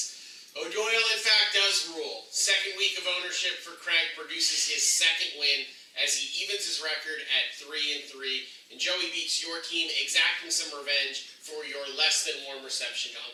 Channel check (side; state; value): both; identical; correlation 1.00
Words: O'Doyle, in fact, does rule. Second week of ownership for Craig produces his second win as he evens his record at 3-3. And Joey beats your team, exacting some revenge for your less than warm reception to